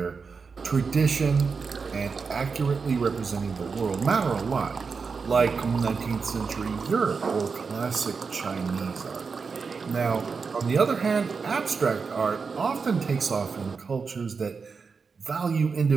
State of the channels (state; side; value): quieter; left; 5.1 dB